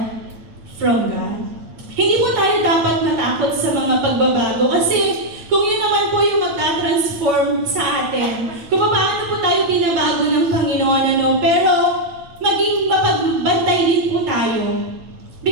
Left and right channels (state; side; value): late; left; 9.3 ms